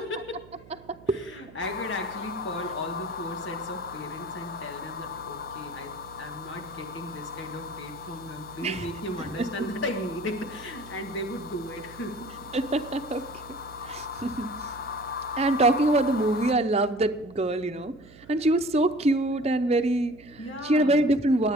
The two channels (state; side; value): noise; right; hum, 22 dB below the sound